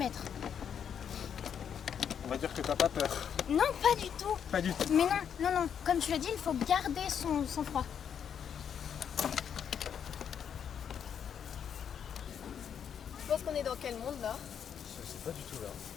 On va dire que t'as pas peur. Non, pas du tout. Pas du tout. Mais non, comme tu l'as dit, il faut garder son sang-froid. Je pense qu'on est dans quel monde là? Je sais pas du tout là.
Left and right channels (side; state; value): right; quieter; 8.1 dB